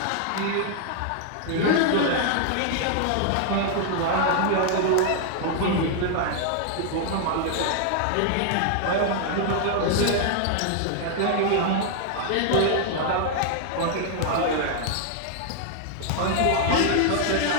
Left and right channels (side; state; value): both; different; correlation 0.00